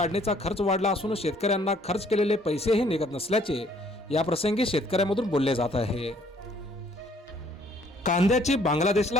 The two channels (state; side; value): normal; both; correlation 0.62